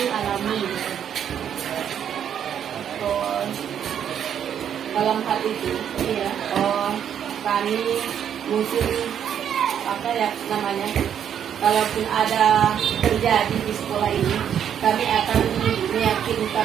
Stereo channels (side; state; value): left; quieter; 9.0 dB